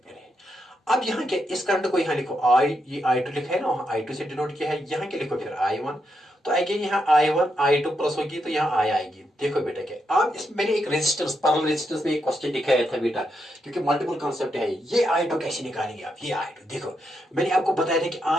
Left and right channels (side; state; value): both; normal; correlation 0.82